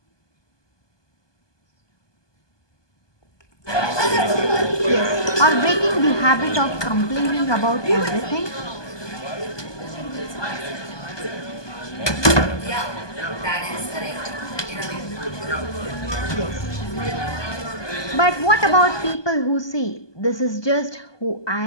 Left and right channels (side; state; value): right; late; 1.2 ms